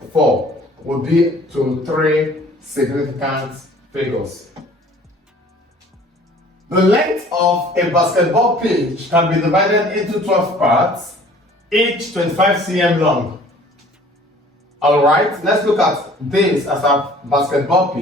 would be to three significant figures. The length of a basketball pitch can be divided into 12 parts, each 25 cm long. Alright, let's look at this as a basketball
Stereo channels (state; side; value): normal; both; correlation 0.51